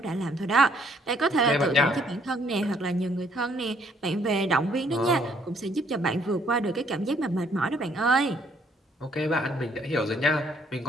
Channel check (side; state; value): both; normal; correlation 0.66